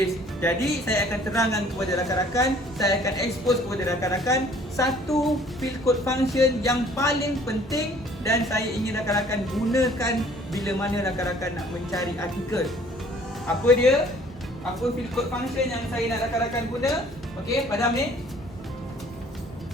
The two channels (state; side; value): normal; both; correlation 0.55